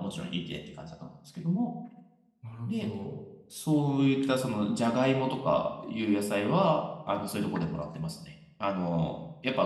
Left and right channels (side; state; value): both; identical; correlation 1.00